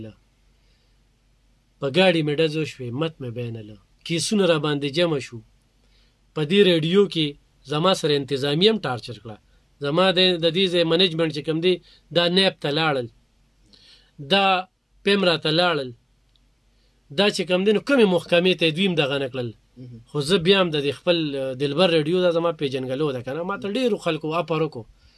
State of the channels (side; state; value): both; identical; correlation 1.00